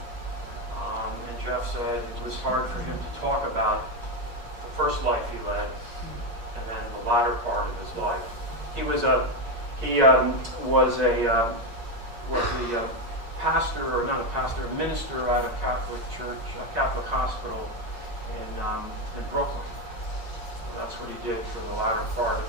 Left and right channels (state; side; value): late; left; 8.6 ms